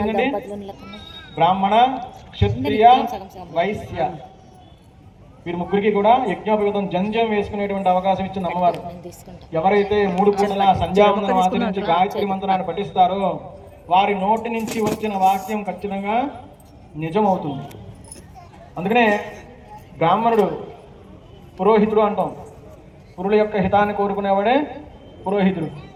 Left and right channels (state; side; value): identical; both; correlation 1.00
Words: బ్రాహ్మణ, క్షత్రియ, వైశ్య వీరి ముగ్గురికి కూడా యజ్ఞోపవీతం జంజం వేసుకునేటువంటి అవకాశం ఇచ్చింది అమ్మవారు. ఎవరైతే 3 పూటల సంధ్యావందనం ఆచరించి గాయత్రి మంత్రాన్ని పఠిస్తారో వారి నోటి నుంచి వచ్చిన వాక్యం ఖచ్చితంగా నిజమవుతుంది. అందుకనే బ్రాహ్మణుడు పురోహితుడు అంటాం. పురుల యొక్క హితాన్ని కోరుకునేవాడే పురోహితుడు.